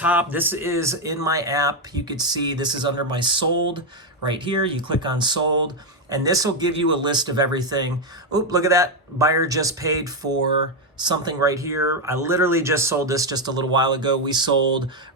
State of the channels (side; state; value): both; normal; correlation 0.05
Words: This is in my app. You could see this is under my sold right here. You click on sold, and this will give you a list of everything. Oh, look at that. Buyer just paid for something right here. I literally just sold this just a little while ago. We sold